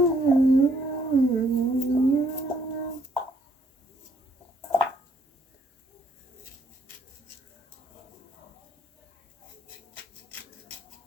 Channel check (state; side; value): normal; both; correlation 0.68